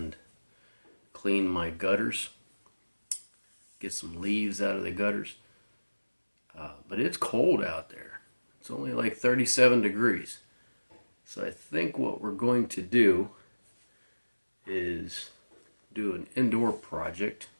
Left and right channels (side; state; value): both; inverted; correlation -1.00